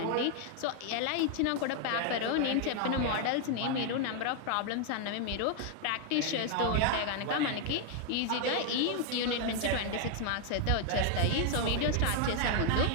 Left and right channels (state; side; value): different; both; correlation 0.00